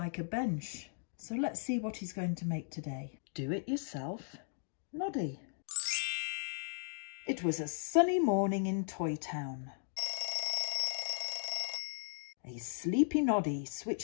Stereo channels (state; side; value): silent; right; digital silence